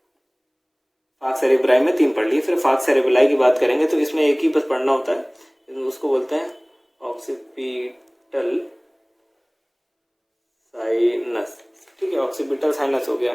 फाग सेरेब्राई में 3 पढ़ लिए। फिर फाग सेरेब्राई की बात करेंगे तो इसमें एक ही बस पढ़ना होता है, उसको बोलते हैं ऑक्सीपिटल साइनस, ठीक है। ऑक्सीपिटल साइनस हो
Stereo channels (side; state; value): both; identical; correlation 1.00